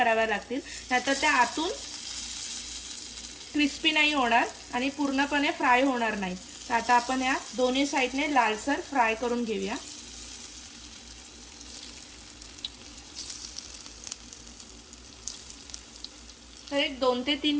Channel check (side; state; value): both; identical; correlation 1.00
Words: लागतील, नाहीतर त्या आतून क्रिस्पी नाही होणार आणि पूर्णपणे फ्राय होणार नाही। तर आता आपण या दोन्ही साइडने लालसर फ्राय करून घेऊया। तर एक 2 ते 3